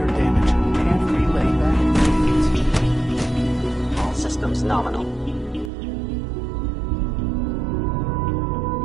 damage. Can't relay that. All systems nominal.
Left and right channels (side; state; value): left; drops out; at 5.7 s